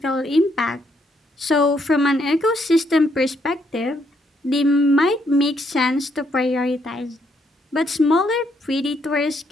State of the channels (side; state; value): both; normal; correlation 0.73